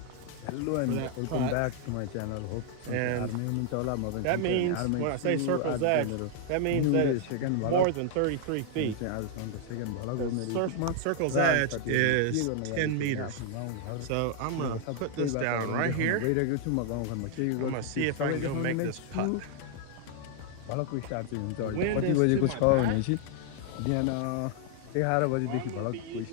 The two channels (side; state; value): both; different; correlation 0.00